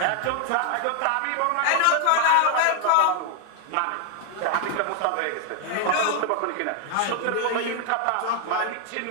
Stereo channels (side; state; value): both; different; correlation 0.00